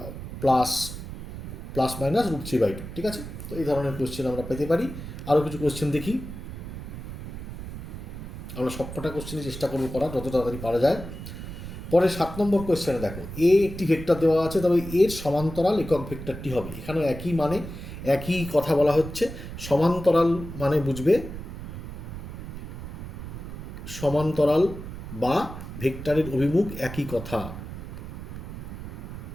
প্লাস মাইনাস √3/2। ঠিক আছে, তো এই ধরনের কোয়েশ্চেন আমরা পেতে পারি। আরও কিছু কোয়েশ্চেন দেখি, আমরা সবকটা কোয়েশ্চেনই চেষ্টা করবো করার যত তাড়াতাড়ি পারা যায়। পরে 7 নম্বর কোয়েশ্চেনে দেখো, এ একটি ভেক্টর দেওয়া আছে, তবে এর সমান্তরাল একক ভেক্টরটি হবে। এখানেও একই মানে একই কথা বলা হচ্ছে। সমান্তরাল মানে বুঝবে সমান্তরাল বা ভেক্টরের অভিমুখ একই কথা,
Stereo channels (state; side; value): noise; right; rumble, 9 dB below the sound